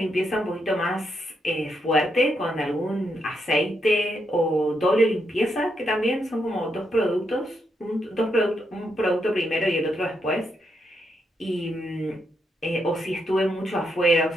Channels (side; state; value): both; normal; correlation 0.80